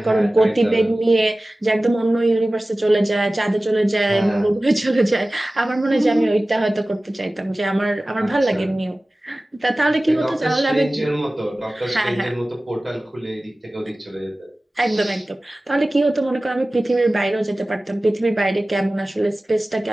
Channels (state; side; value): normal; both; correlation 0.97